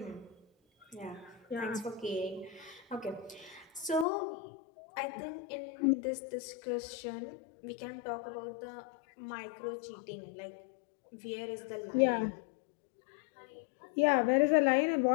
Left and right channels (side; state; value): right; drops out; at 4.0 s